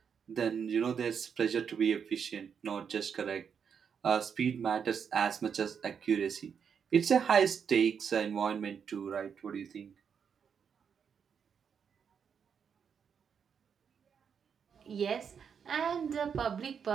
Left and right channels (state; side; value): quieter; left; 7.0 dB